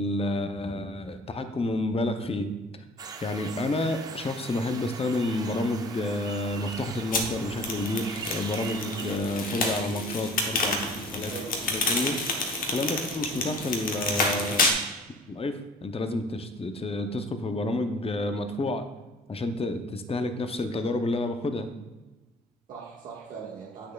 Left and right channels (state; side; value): normal; both; correlation 0.49